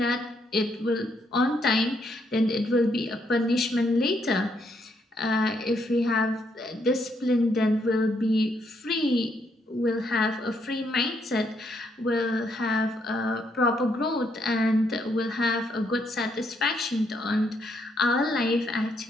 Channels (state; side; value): normal; both; correlation 0.74